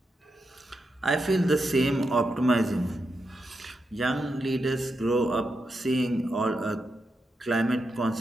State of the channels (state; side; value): normal; both; correlation 0.86